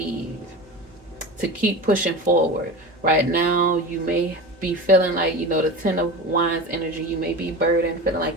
to keep pushing forward. Right now, you may be feeling like, the Ten of Wands energy, you may be burdened, feeling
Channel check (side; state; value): right; noise; hum, 28 dB below the sound